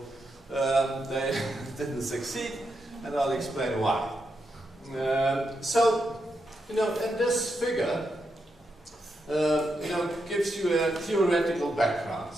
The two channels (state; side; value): normal; both; correlation 0.84